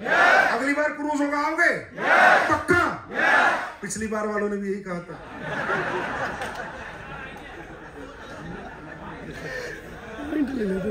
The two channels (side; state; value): both; identical; correlation 1.00